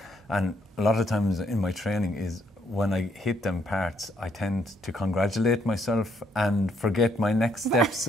and a lot of times in my training is when I hit them parts, I tend to congratulate myself and forget my next steps.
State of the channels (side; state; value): both; normal; correlation 0.71